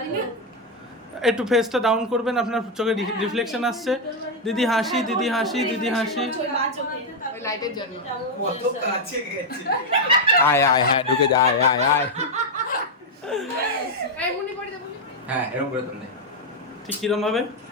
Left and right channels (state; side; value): normal; both; correlation 0.02